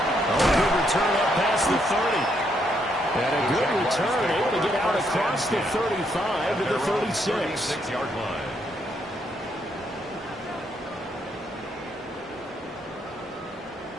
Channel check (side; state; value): both; normal; correlation 0.75